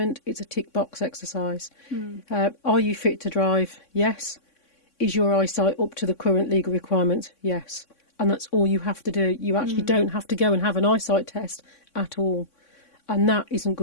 It's a tick box exercise. Are you fit to drive? Yes. Is your eyesight up to the current legal requirements? Yes. And that's all you have to do. You actually don't have to go and have an eyesight test at all. And that isn't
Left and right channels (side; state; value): right; late; 3.6 ms